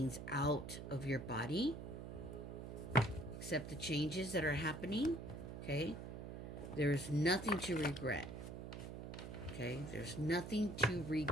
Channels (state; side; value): noise; right; hum, 8 dB below the sound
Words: out of your body. Accept the changes that are happening, okay? There's nothing to regret, okay? There's nothing to